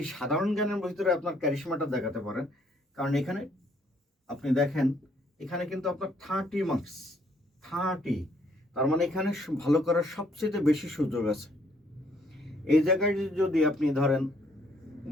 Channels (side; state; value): both; normal; correlation 0.66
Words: সাধারণ জ্ঞানের ভিতরে আপনার ক্যারিশমাটা দেখাতে পারেন, কারণ এখানে আপনি দেখেন, এখানে কিন্তু আপনার 30 মার্কস, 30, তার মানে এখানে ভালো করার সবচেয়ে বেশি সুযোগ আছে। এই জায়গায় যদি আপনি ধরেন